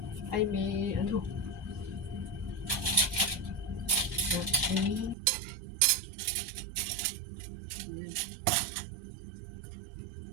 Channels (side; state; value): left; drops out; at 5.2 s